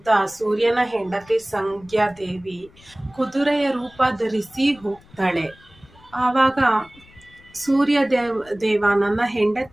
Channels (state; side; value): noise; left; rumble, 26 dB below the sound